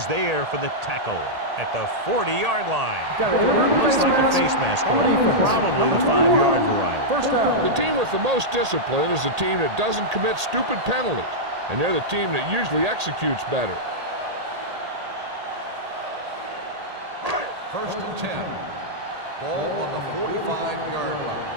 there for the tackle at the 40-yard line. Got an inadvertent Looks face like a mask face mask on the call. defense. Probably the Number 5-yard 21. variety. First down. The team with the most discipline is the team that doesn't commit stupid penalties, and they're the team that usually executes better. First and 10. Ball on the 45-yard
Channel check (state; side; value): late; left; 1.8 ms